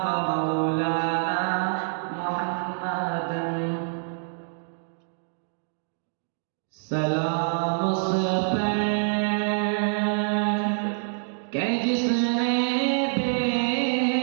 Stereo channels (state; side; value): silent; left; digital silence